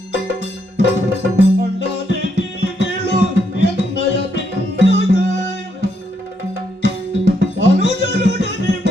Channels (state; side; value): normal; both; correlation 0.76